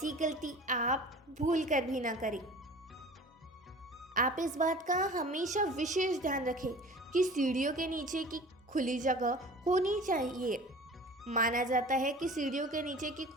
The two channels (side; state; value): both; normal; correlation 0.42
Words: गलती आप भूल कर भी ना करें। आप इस बात का हमेशा विशेष ध्यान रखें कि सीढ़ियों के नीचे की खुली जगह होनी चाहिए। माना जाता है कि सीढ़ियों के नीचे की